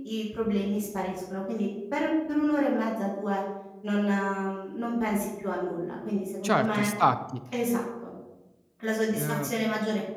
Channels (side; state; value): both; identical; correlation 1.00